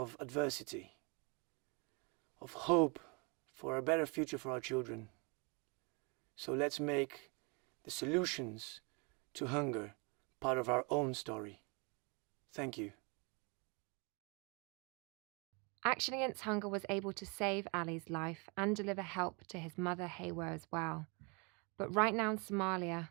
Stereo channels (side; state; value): left; quieter; 32.1 dB